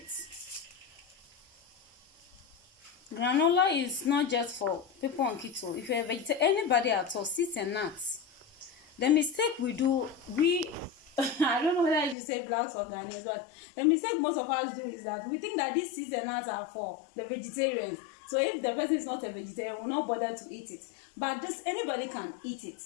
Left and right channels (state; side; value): drops out; right; at 12.2 s